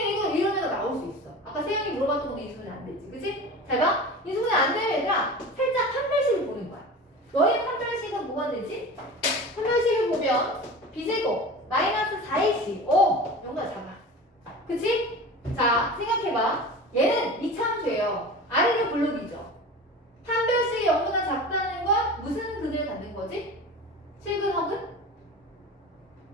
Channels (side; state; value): both; normal; correlation 0.34